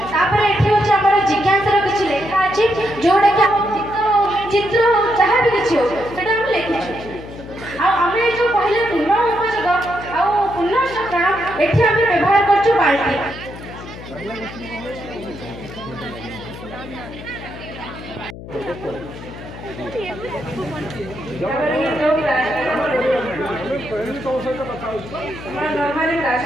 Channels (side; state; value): left; noise; hum, 13 dB below the sound